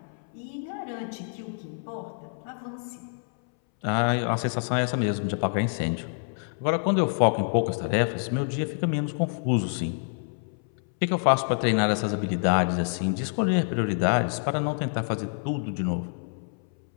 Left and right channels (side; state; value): right; silent; 60 dB below the other